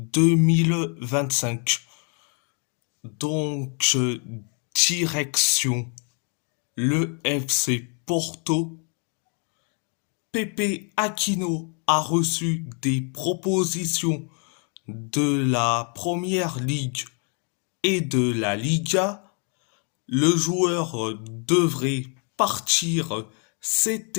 Donc, direction le FC Porto. Pepe Aquino a reçu des propositions de la Première Ligue et de la Liga. Le joueur devrait partir cet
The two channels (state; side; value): quieter; right; 39.7 dB